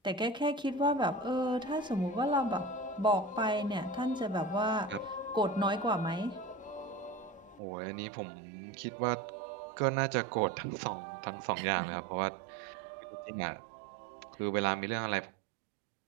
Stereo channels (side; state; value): left; drops out; at 7.6 s